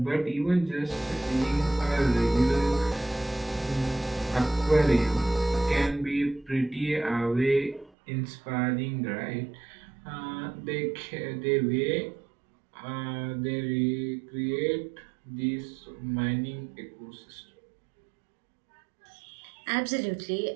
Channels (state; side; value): drops out; left; at 7.9 s